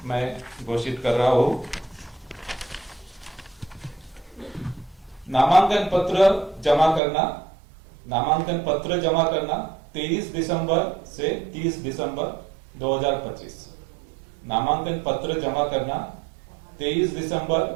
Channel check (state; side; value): drops out; left; at 7.0 s